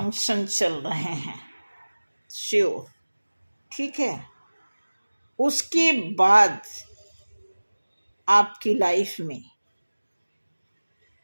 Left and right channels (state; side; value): inverted; both; correlation -1.00